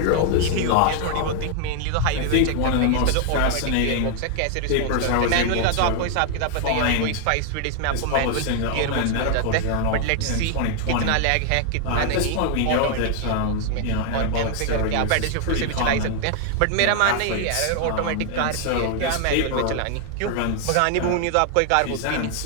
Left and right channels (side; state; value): both; different; correlation 0.00